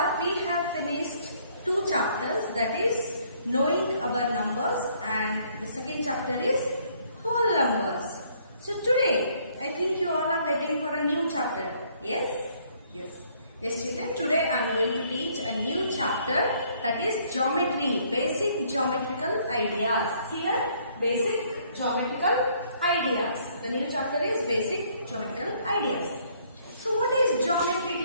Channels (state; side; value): inverted; both; correlation -0.64